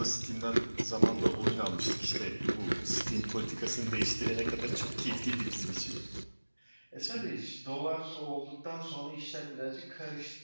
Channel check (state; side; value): inverted; both; correlation -1.00